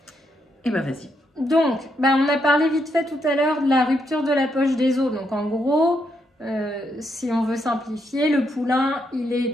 Et vas-y. Donc, on a parlé vite fait tout à l'heure de la rupture de la poche des os, donc en gros... si on veut simplifier, le poulain, il est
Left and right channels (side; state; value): both; normal; correlation 0.78